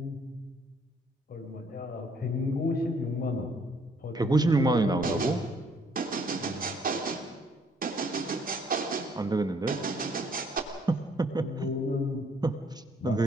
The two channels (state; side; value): normal; both; correlation 0.65